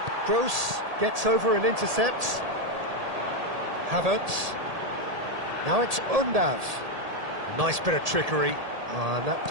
Gross gets over and intercepts. Havertz. Now it's Undav. Nice bit of trickery. And that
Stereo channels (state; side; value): late; left; 1.8 ms